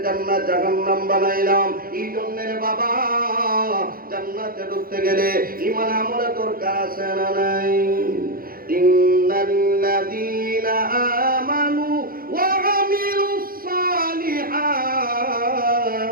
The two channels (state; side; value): late; left; 0.42 ms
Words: জান্নাত জাহান্নাম বানাইলাম। এই জন্য রে বাবা, জান্নাতে ঢুকতে গেলে ঈমান আমলে তোর কাছে না নাই। ইন্নাল্লাযীনা আমানু ওয়া আমিলুস সালিহাত